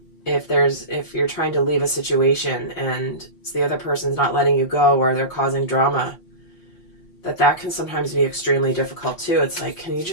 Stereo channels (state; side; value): late; right; 5.6 ms